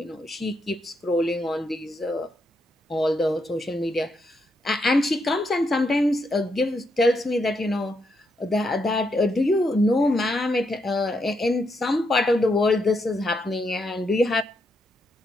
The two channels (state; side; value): normal; both; correlation 0.80